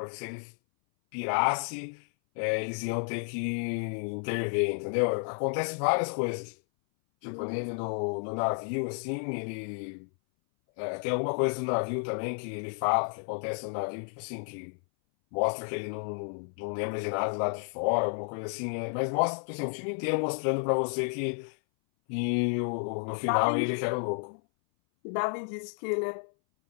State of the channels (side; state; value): right; silent; 57 dB below the other